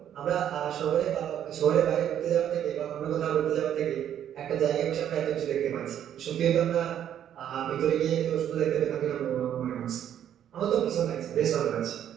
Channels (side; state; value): left; quieter; 10.1 dB